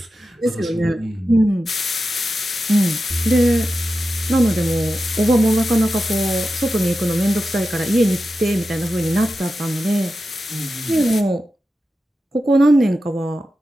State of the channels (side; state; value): both; normal; correlation 0.91